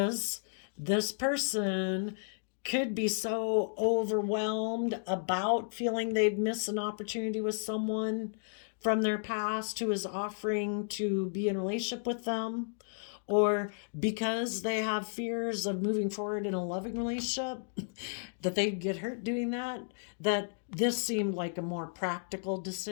this person could be so overwhelmed about feeling they'd miss an opportunity with someone from their past who is offering to be in a relationship with them, or because they have fears of moving forward in a loving relationship, that they'd get hurt doing that, that this seemed like a more practical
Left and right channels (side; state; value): right; silent; digital silence